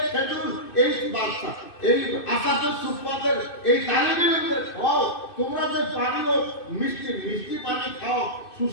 খেজুর এই বাচ্চা এই আসামে সুফফাদের এই তালিবে ইলমের খাও। তোমরা যে পানীয় মিষ্টি পানি খাও,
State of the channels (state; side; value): late; right; 2.6 ms